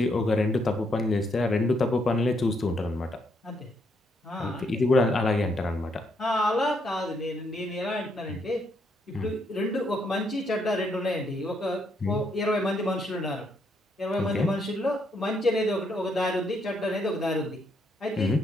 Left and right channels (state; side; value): normal; both; correlation 0.75